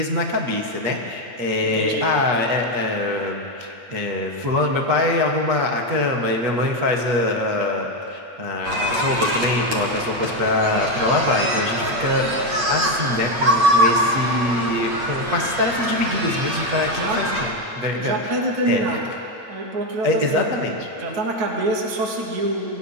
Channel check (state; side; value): late; left; 8.8 ms